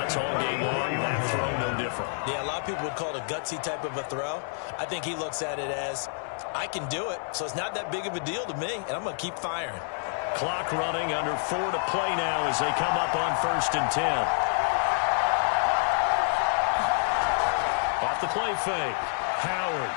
all game long. That throw no different. Yeah, a lot of people would call it a gutsy type of a throw. I think he looks at it as, I can do it, so it's not that big of a deal to me, and I'm going to keep firing. Clock running, under 4 to play now as they come up on 1st and 10. Off the play fake. Howard.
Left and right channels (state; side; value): silent; right; digital silence